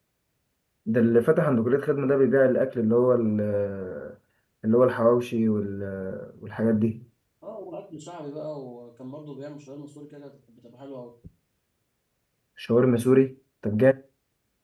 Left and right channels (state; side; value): identical; both; correlation 1.00